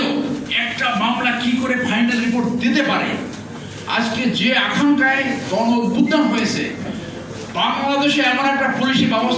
একটা মামলা কি করে ফাইনাল রিপোর্ট দিতে পারে? আজকে যে আকাঙ্ক্ষায় গণ অভ্যুত্থান হয়েছে, বাংলাদেশে এমন একটা পুলিশি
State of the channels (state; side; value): identical; both; correlation 1.00